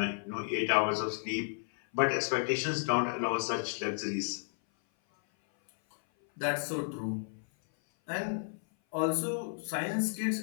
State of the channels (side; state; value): right; silent; 56 dB below the other